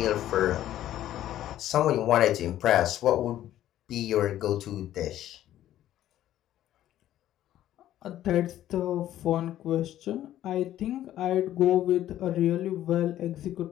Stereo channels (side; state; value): right; quieter; 12.7 dB